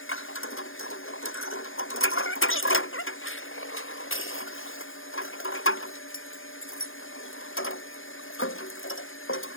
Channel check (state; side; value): late; right; 0.59 ms